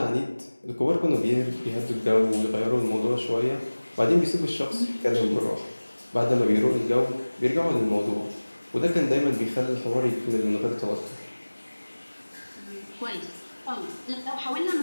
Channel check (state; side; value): inverted; both; correlation -1.00